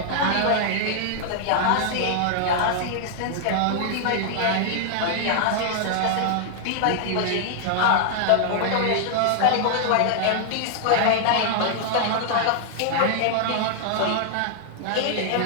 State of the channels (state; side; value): different; both; correlation -0.01